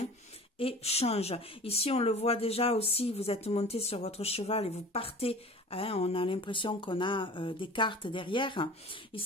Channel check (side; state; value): both; normal; correlation 0.41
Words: et change. Ici, on le voit déjà aussi, vous êtes monté sur votre cheval et vous partez. Hein, on a l'impression qu'on a des cartes derrière.